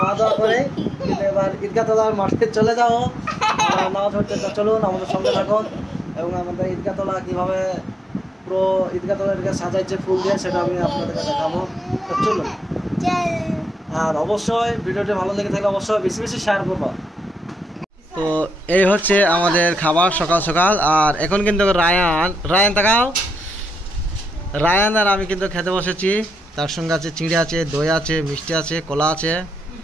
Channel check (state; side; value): normal; both; correlation 0.84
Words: দাওয়া করে, কিন্তু এবার ঈদগাহ তলার মাঠে চলে যাবো নামাজ পড়তে। তো চলুন, আমাদের সঙ্গে থাকুন এবং আমাদের ঈদগাহ তলা কীভাবে পুরো ঈদগাহ তলাকে সাজাইছে ফুল দিয়ে, সেটা আমি আপনাদেরকে দেখাবো। তো চলুন, আর অবশ্যই ভিডিওটি ভালো লেগে থাকলে অবশ্যই বেশি বেশি শেয়ার করবো। তো এই হচ্ছে আমাদের খাবার সকাল সকাল। আর এখন কিন্তু রায়ান তাকাও, রায়ান আর আমি কিন্তু খেতে বসেছি। তার সঙ্গে আছে চিড়ে আছে, দই আছে, মিষ্টি আছে, কলা আছে,